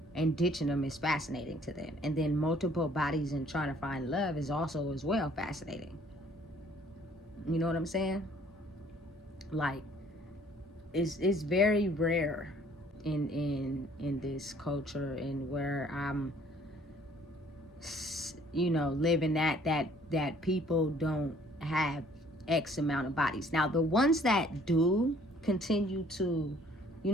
and ditching them is fascinating to them. And then multiple bodies and trying to find love is also as well fascinating. You know what I'm saying? Like, it's very rare in this culture, and where I'm, you know, living that people don't have X amount of bodies. Now the ones that do continue to, you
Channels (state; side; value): normal; both; correlation 0.58